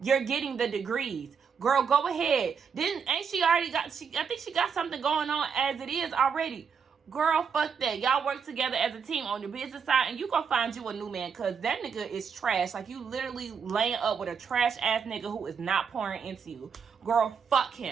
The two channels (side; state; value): left; quieter; 6.4 dB